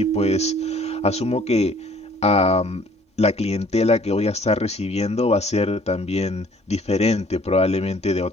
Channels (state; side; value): normal; both; correlation 0.56